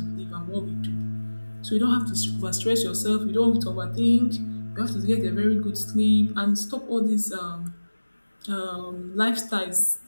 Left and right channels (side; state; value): both; inverted; correlation -1.00